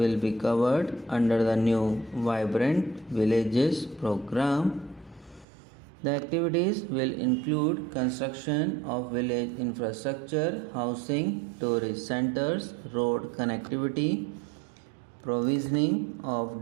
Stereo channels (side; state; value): left; drops out; at 5.5 s